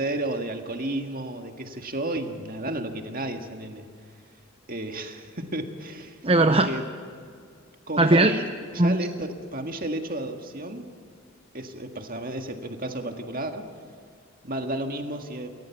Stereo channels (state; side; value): normal; both; correlation 0.39